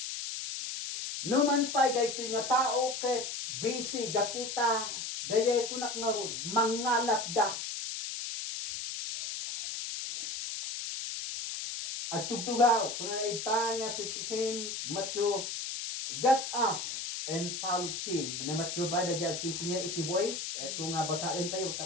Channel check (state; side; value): noise; left; hiss, 5 dB below the sound